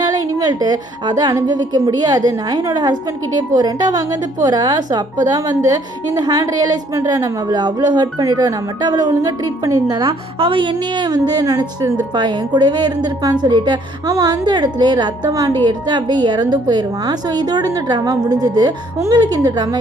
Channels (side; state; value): both; normal; correlation 0.62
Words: இனிமேல்ட்டு அதை அனுபவிக்க முடியாது, நான் என்னோட ஹஸ்பண்ட் கிட்டே போகிறேன்ட்டு அவள் அங்கேருந்து போகிறா. ஸோ அப்போ தான் வந்து இந்த ஹேண்ட் ரியலைஸ் பண்ணுறா, நம்ம அவளை அவ்வளோ ஹர்ட் பண்ணிட்டோம், நான் மட்டும் அவளை ஒழுங்காக ட்ரீட் பண்ணியிருந்தானா அவள் என்னையே வந்து நினச்சிட்டு இருந்திருப்பா, என் கூடவே இருந்திருப்பான்னு சொல்லிட்டு அவன் அந்த இடத்துல ரத்த வாண்டி எடுத்து அப்படியே இறந்து போயிடுவான். ஸோ இதோட இந்த ட்ராமா முடிஞ்சது. உங்களுக்கு இந்த ட்ராமா